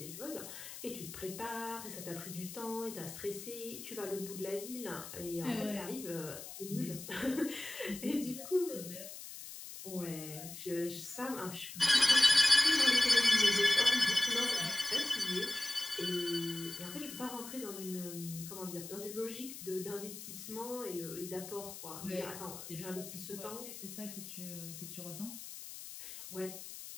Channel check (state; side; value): noise; left; hiss, 11 dB below the sound